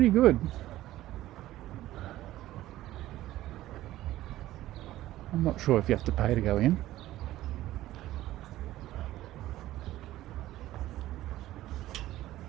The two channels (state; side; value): quieter; left; 15.1 dB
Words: good. I'm not sure if you have to pay to go in.